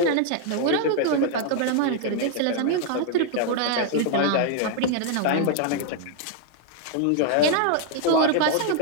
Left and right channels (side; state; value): both; different; correlation 0.00